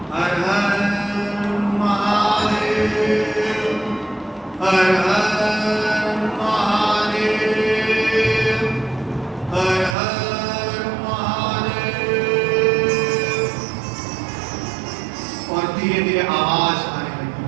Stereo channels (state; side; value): drops out; left; at 10.0 s